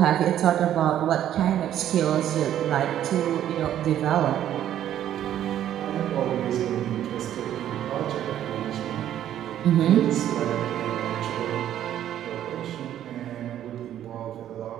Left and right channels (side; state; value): left; quieter; 11.3 dB